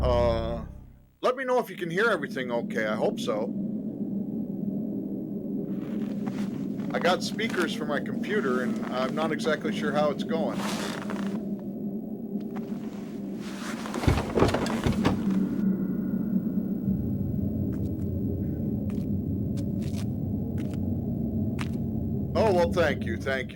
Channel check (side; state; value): both; identical; correlation 1.00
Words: Let me know if you can hear everything okay. I hope so. I got speakers for my computer, and I'm not exactly sure how it's going. Oh, well, thank you. Thank